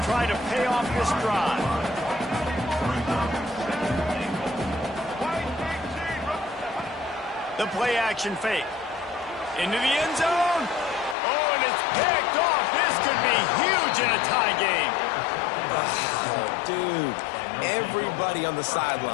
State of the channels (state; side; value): drops out; right; at 11.2 s